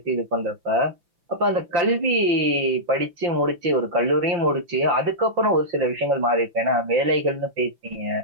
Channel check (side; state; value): left; late; 5.7 ms